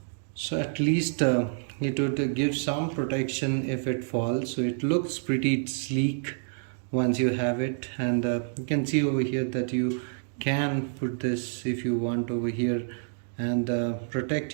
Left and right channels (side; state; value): left; silent; digital silence